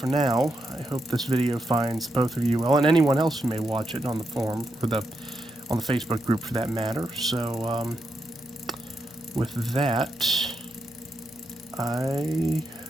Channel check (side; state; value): both; normal; correlation 0.83